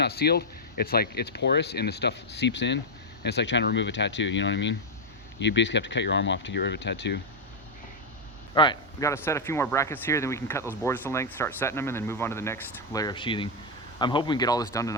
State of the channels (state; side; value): noise; right; hum, 25 dB below the sound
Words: sealed, it's like it's porous and the stuff seeps in, and it's like trying to remove a tattoo. You know what I mean? You basically have to cut your arm off to get rid of a tattoo. All right, we got to set a few more brackets here, then we can cut those boards to length, start setting them, and then move on to the next layer of sheathing. I'm hoping we can get all this done